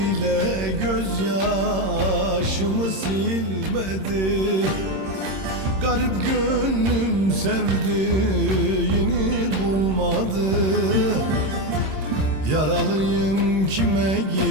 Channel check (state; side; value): late; left; 26 ms